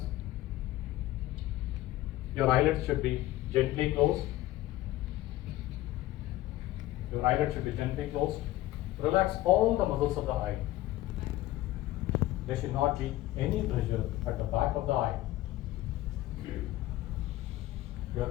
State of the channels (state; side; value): quieter; right; 16.0 dB